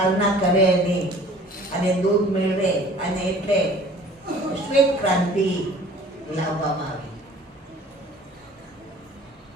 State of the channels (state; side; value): normal; both; correlation 0.49